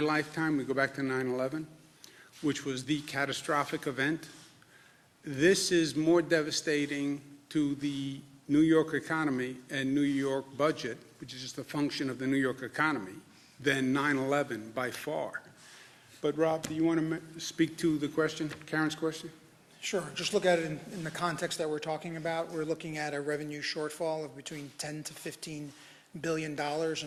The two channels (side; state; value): both; identical; correlation 1.00